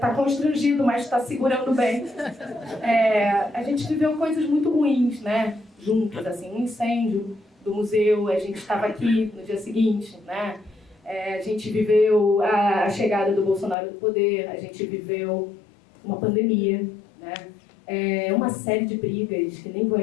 constrangido, mas está segurando bem. A gente viveu coisas muito ruins, né? Juntos, assim, um incêndio do museu, a gente estava aqui no dia seguinte, né? A gente viveu a chegada do Bolsonaro do poder, a gente viveu uma pandemia, né? Uma série de brigas que nem vou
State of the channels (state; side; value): drops out; right; at 13.8 s